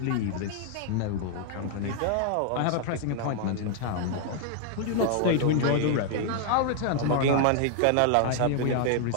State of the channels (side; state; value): both; different; correlation 0.00